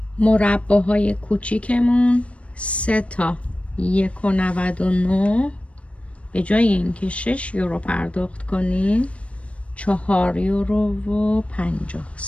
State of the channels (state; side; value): late; right; 0.063 ms